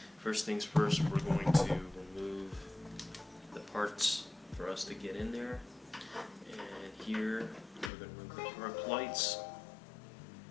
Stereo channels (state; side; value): drops out; right; at 7.9 s